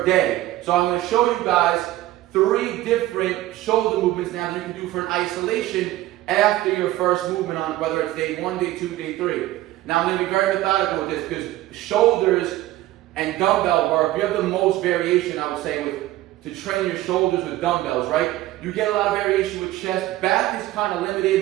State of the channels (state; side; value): quieter; left; 15.8 dB